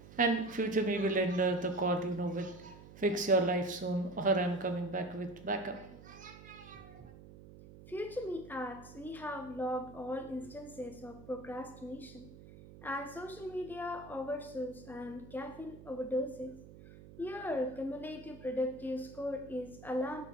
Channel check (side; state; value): right; noise; hum, 17 dB below the sound